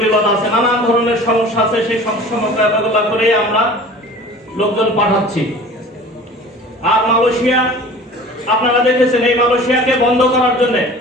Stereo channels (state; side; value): normal; both; correlation 0.43